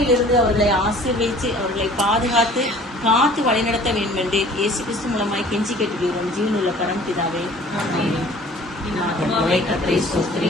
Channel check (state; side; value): normal; both; correlation 0.50